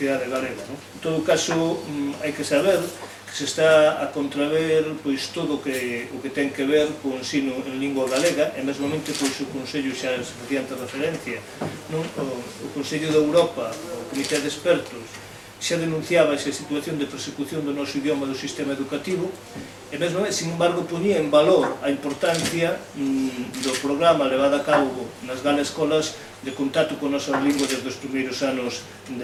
galega. En todo caso, hai que saber que se está a contraver todo o que ten que ver co ensino en lingua galega, e mesmamente o Consello xa se facía antes referencia, o Consello de Europa, o Comité de Expertos, xa denunciaba esa situación de persecución do noso idioma do sistema educativo, e mesmo, sin embargo, ponía en valor a importancia do programa levado a cabo nas galas escolas de contacto con a nosa lingua desde os primeiros anos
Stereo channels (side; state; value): both; identical; correlation 1.00